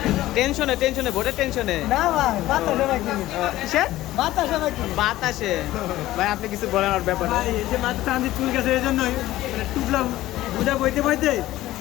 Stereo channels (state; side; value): quieter; right; 15.8 dB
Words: টেনশনে ভোটের টেনশনে। না ভাই, বাতাসে ভাই কি? কিসের বাতাসে ভাই কি? বাতাসে? ভাই আপনি কিছু বলেন ওর ব্যাপারে। ভাই এই যে মাথা টান দিয়ে চুল গেছে এই জন্যই মানে টুকলা বুঝা বইতে